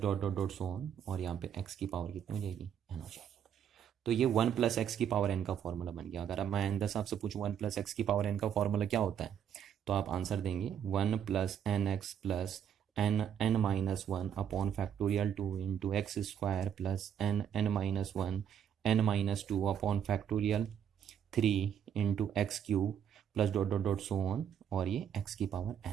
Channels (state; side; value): quieter; left; 8.8 dB